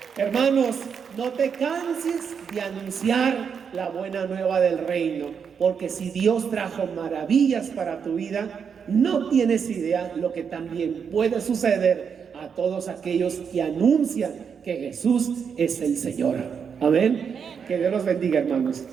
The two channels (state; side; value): quieter; left; 6.7 dB